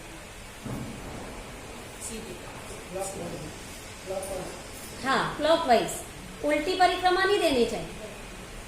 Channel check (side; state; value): both; identical; correlation 1.00